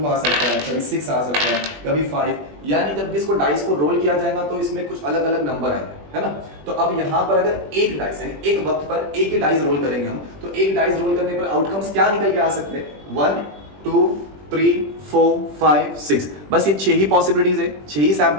आ सकता है, कभी 6 आ सकता है, कभी 5। यानी जब भी इसको डाइस को रोल किया जाएगा तो इसमें कुछ अलग अलग नंबर आएंगे, है ना। तो अब यहाँ पर अगर एक डाइस है, एक वक्त पर एक ही डाइस रोल करेंगे हम, तो एक डाइस रोल करने पर आउटकम्स क्या निकल के आ सकते हैं, 1 2 3 4 5 6। बस ये 6 ही पॉसिबिलिटीज है, 6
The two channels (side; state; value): left; late; 20 ms